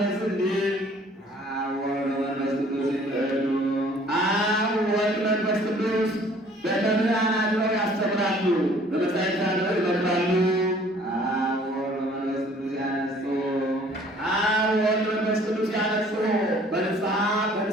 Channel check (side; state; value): both; normal; correlation 0.55